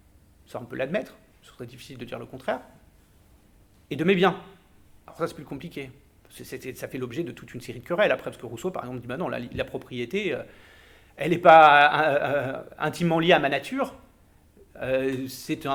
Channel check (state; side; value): identical; both; correlation 1.00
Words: ça on peut l'admettre, ce serait difficile de dire le contraire, et de mes biens. Alors ça c'est plus compliqué, ça fait l'objet de toute une série de querelles après, parce que Rousseau par exemple dit bah non, la propriété, elle n'est pas intimement liée à ma nature, c'est